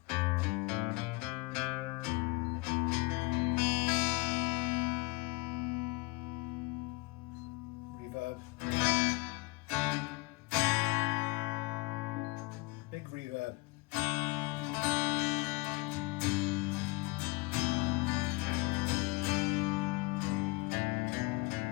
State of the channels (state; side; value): quieter; right; 24.1 dB